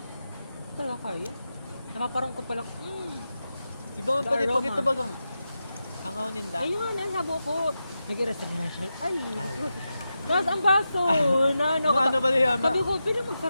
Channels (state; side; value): inverted; both; correlation -0.90